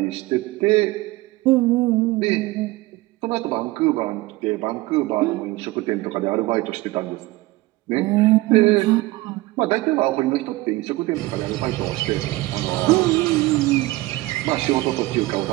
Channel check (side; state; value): left; quieter; 19.7 dB